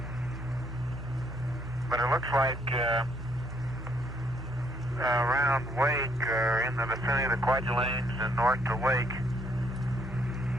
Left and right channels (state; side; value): normal; both; correlation 0.68